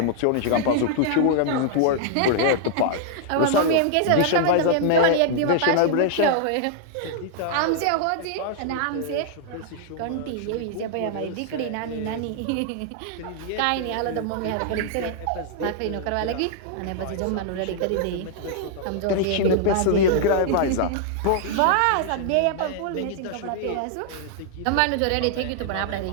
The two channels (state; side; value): different; both; correlation -0.01